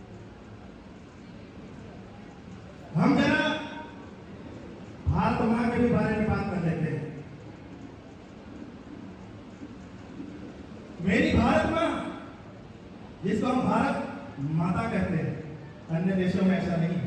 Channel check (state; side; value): identical; both; correlation 1.00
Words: हम जरा भारत मां के भी बारे में बात कर लेते हैं। मेरी भारत मां, जिसको हम भारत माता कहते हैं, अन्य देशों में ऐसा नहीं है,